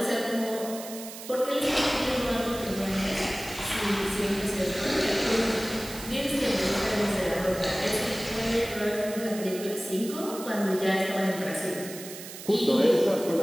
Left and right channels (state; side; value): noise; right; hiss, 12 dB below the sound